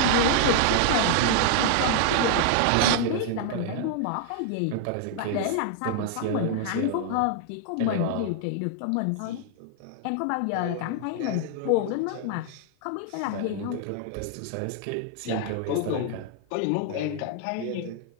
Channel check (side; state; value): both; different; correlation 0.00